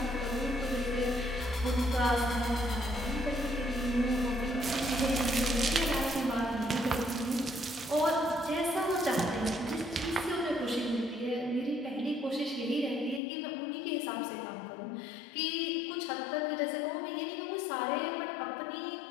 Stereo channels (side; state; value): right; drops out; at 13.2 s